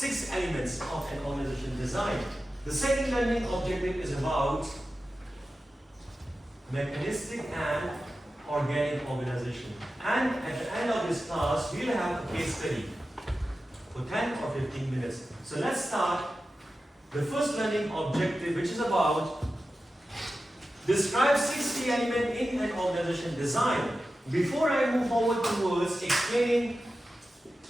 elements of an organization design. The second learning objective is about mechanistic and organic organization. And at the end of this class, we'll have a case study for 10 or 15 minutes. So let's start the first learning objective, which is about describe 6 key elements in an organization design. Before I move forward towards explaining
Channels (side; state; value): both; normal; correlation 0.93